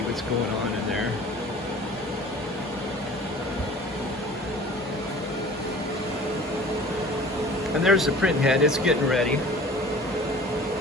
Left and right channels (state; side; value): normal; both; correlation 0.45